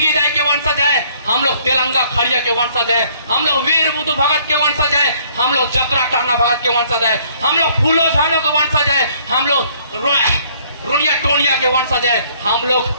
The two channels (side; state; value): both; inverted; correlation -0.62